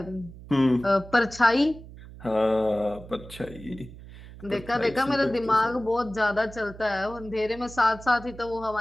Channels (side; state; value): right; noise; hum, 17 dB below the sound